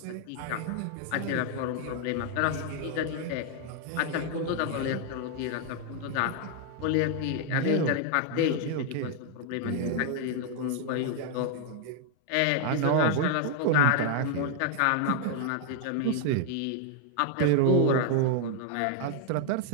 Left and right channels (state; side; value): different; both; correlation 0.00